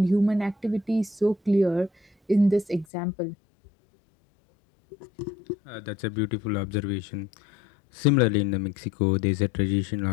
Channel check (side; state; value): right; drops out; at 2.9 s